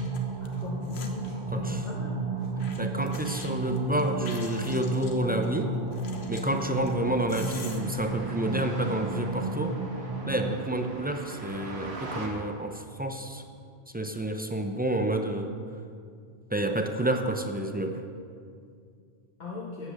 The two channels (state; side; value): normal; both; correlation 0.22